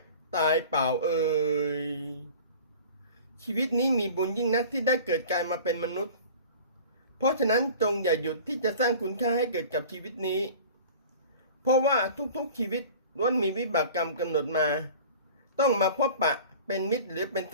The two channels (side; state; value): both; inverted; correlation -0.42